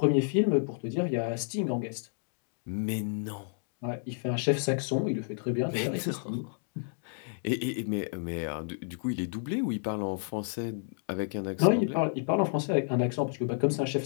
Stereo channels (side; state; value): right; silent; digital silence